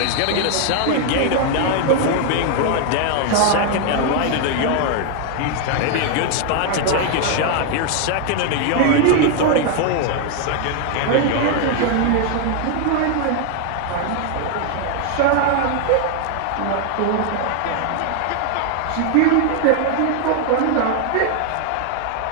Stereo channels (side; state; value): both; different; correlation 0.00